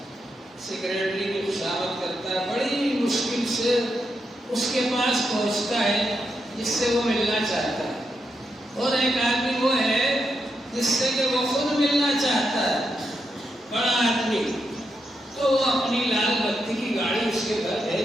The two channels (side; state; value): both; normal; correlation 0.83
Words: سیکریٹری کی خوشامد کرتا ہے، بڑی مشکل سے اس کے پاس پہنچتا ہے جس سے وہ ملنا چاہتا ہے۔ اور ایک آدمی وہ ہے جس سے کہ وہ خود ملنا چاہتا ہے، بڑا آدمی، تو وہ اپنی لال بتی کی گاڑی اس کے گھر